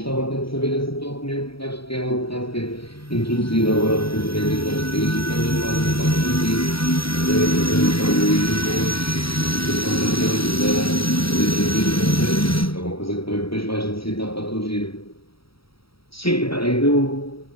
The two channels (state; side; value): late; right; 0.75 ms